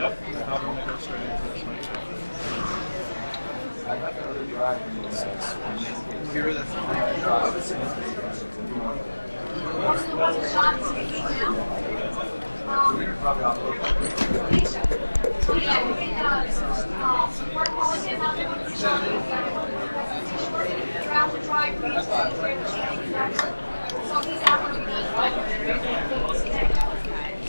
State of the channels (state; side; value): inverted; both; correlation -1.00